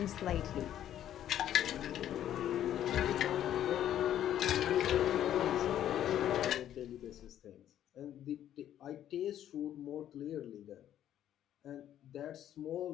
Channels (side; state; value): right; quieter; 11.2 dB